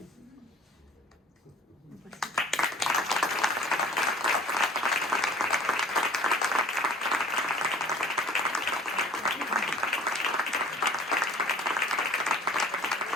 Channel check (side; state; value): both; normal; correlation 0.48